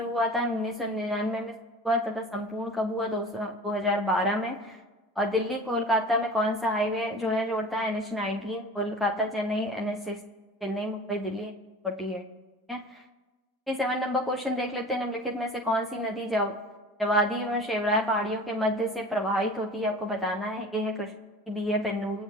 हुआ था, 1999 में हुआ तथा संपूर्ण कब हुआ, 2012 में। और दिल्ली कोलकाता में कौन सा हाईवे जो है जोड़ता है, NH19, कोलकाता चेन्नई, NH6 चेन्नई मुंबई दिल्ली 48। ठीक है, 57 नंबर क्वेश्चन देख लेते हैं। निम्नलिखित में से कौन सी नदी जवादी और शेवराय पहाड़ियों के मध्य से प्रवाहित होती है, आपको बताना है। ए है कृष्णा, बी है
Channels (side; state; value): both; normal; correlation 0.39